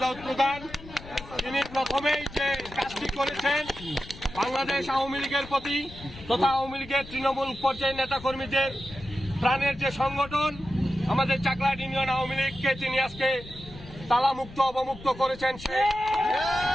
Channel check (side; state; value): left; noise; rumble, 16 dB below the sound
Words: দাউদ প্রধান, তিনি প্রথমেই যে কাজটি করেছেন বাংলাদেশ আওয়ামী লীগের প্রতি তথা আওয়ামী লীগের তৃণমূল পর্যায়ের নেতাকর্মীদের প্রাণের যে সংগঠন আমাদের চাকলাহাট ইউনিয়ন আওয়ামী লীগকে তিনি আজকে তালামুক্ত অবমুক্ত করেছেন।